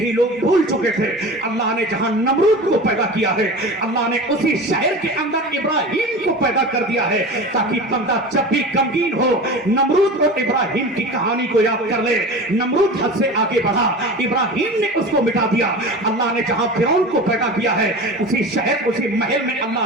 लोग भूल चुके थे अल्लाह ने जहां नमरूद को पैदा किया है, अल्लाह ने उसी शहर के अंदर इब्राहिम को पैदा कर दिया है, ताकि बंदा जब भी गमगीन हो नमरूद और इब्राहिम की कहानी को याद कर ले। नमरूद हद से आगे बढ़ा, इब्राहिम ने उसको मिटा दिया। अल्लाह ने जहां फिरौन को पैदा किया है, उसी शहर उसी महल में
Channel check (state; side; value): normal; both; correlation 0.33